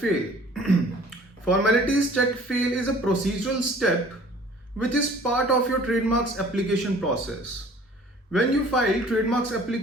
Formalities Chk Fail is a procedural step which is part of your trademarks application process. When you file trademarks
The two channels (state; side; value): normal; both; correlation 0.51